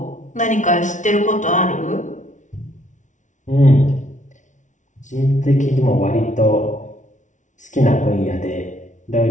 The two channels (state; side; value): late; right; 0.36 ms